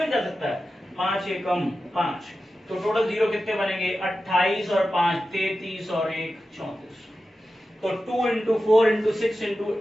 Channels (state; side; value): normal; both; correlation 0.93